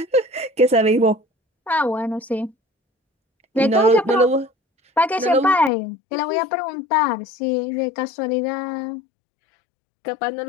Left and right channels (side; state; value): right; drops out; at 5.7 s